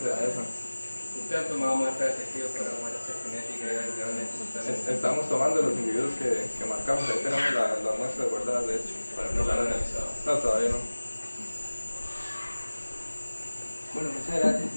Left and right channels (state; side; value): inverted; both; correlation -1.00